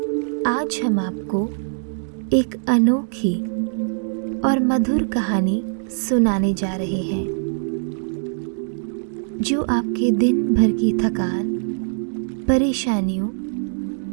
आज हम आपको एक अनोखी और मधुर कहानी सुनाने जा रहे हैं जो आपके दिन भर की थकान, परेशानियों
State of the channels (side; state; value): left; silent; digital silence